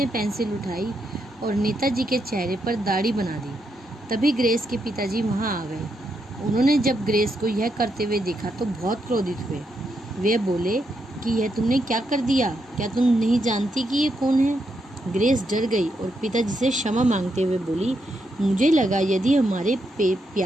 पेंसिल उठाई और नेताजी के चेहरे पर दाढ़ी बना दी। तभी ग्रेस के पिताजी वहाँ आ गए। उन्होंने जब ग्रेस को यह करते हुए देखा तो बहुत क्रोधित हुए। वे बोले कि यह तुमने क्या कर दिया? क्या तुम नहीं जानती कि ये कौन है? ग्रेस डर गई और पिताजी से क्षमा मांगते हुए बोली, मुझे लगा यदि हमारे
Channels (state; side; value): normal; both; correlation 0.81